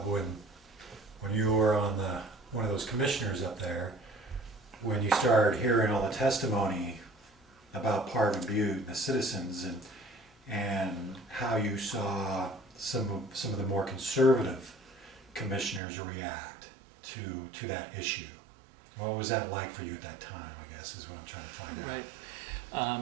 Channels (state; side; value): drops out; left; at 15.8 s